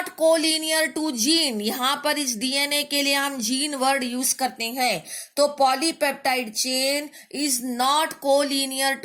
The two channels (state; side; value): identical; both; correlation 1.00